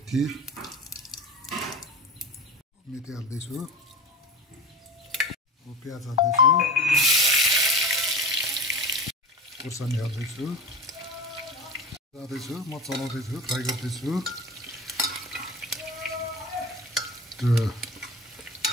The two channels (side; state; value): both; normal; correlation 0.30